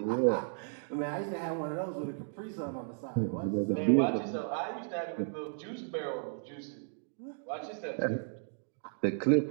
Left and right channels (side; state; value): left; silent; digital silence